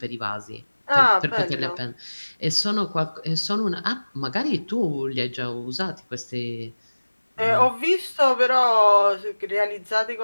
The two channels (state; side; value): inverted; both; correlation -1.00